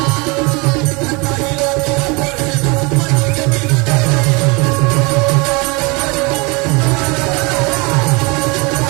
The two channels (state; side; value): quieter; left; 27.9 dB